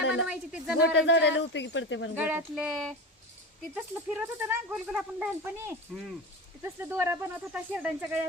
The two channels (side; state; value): both; normal; correlation 0.25